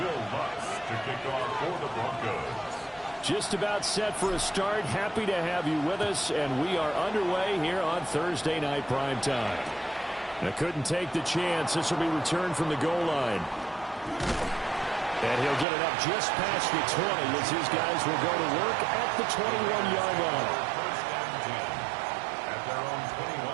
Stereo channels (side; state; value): left; drops out; at 15.7 s